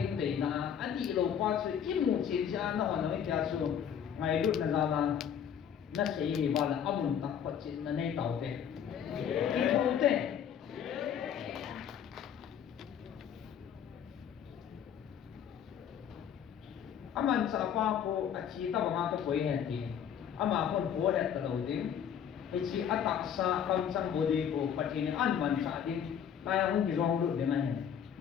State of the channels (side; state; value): right; quieter; 8.6 dB